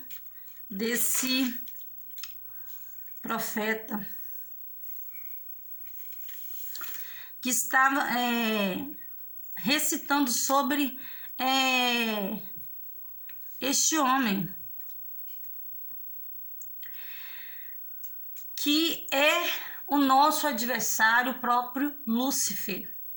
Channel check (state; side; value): identical; both; correlation 1.00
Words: desse profeta que estava recitando sobre este homem que é o nosso adversário, o próprio Lúcifer,